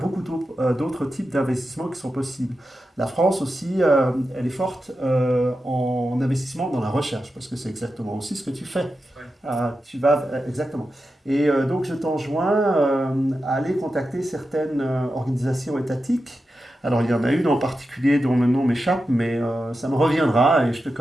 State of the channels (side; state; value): both; normal; correlation 0.90